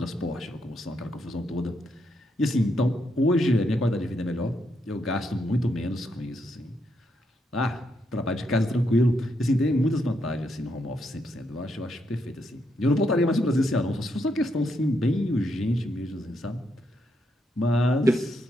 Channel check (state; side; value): normal; both; correlation 0.79